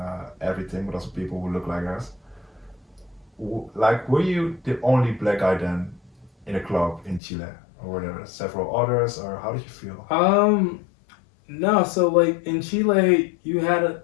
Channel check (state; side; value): drops out; right; at 7.2 s